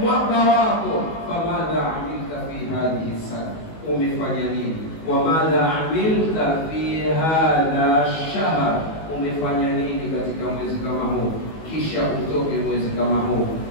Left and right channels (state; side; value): late; right; 19 ms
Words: wako. Famadha amilta fi hadhihi sana, umefanya nini? Wamadha amilta fi hadha shahr, umefanya nini katika mwezi kama huu? Kisha utoke mwezi kama huu